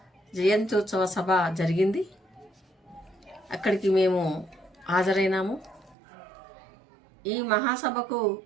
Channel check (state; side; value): drops out; left; at 6.0 s